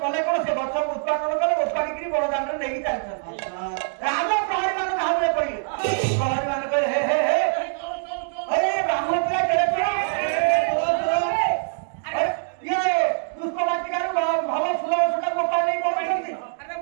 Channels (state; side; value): silent; left; digital silence